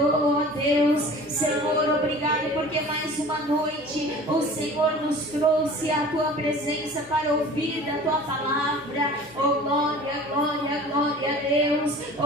ó Deus. Senhor, obrigado porque mais uma noite o Senhor nos trouxe a tua presença para ouvir da tua palavra. Oh, glória, glória, glória a Deus.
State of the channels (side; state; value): left; noise; hum, 25 dB below the sound